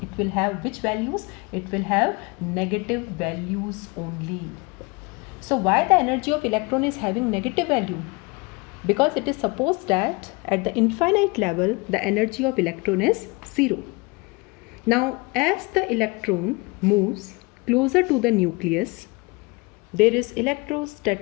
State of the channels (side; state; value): right; quieter; 26.9 dB